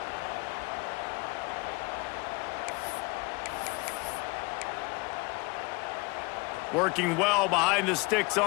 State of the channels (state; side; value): quieter; right; 26.5 dB